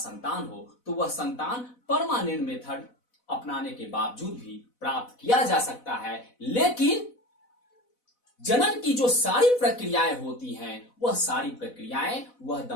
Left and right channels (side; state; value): right; late; 4.0 ms